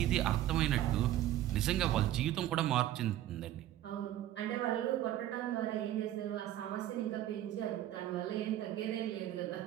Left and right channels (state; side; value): quieter; left; 13.0 dB